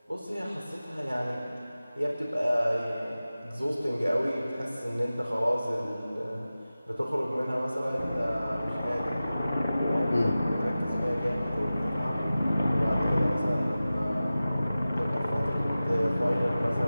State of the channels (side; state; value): both; inverted; correlation -0.96